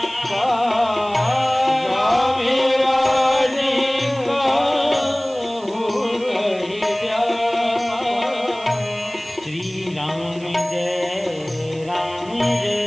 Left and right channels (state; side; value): noise; right; hiss, 23 dB below the sound